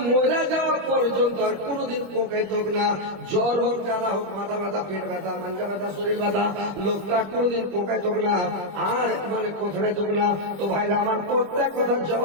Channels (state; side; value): late; left; 25 ms